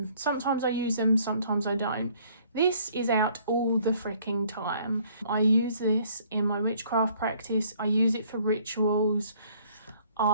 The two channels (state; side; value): inverted; both; correlation -0.60